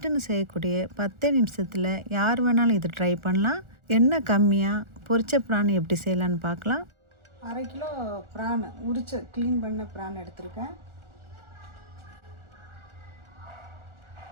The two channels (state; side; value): late; left; 1.4 ms